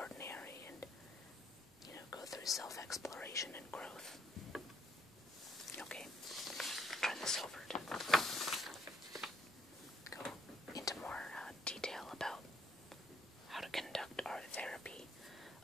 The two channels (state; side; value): normal; both; correlation 0.71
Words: and, go through self-exploration and growth. Okay, turn this over to go into more detail about how to conduct art therapy.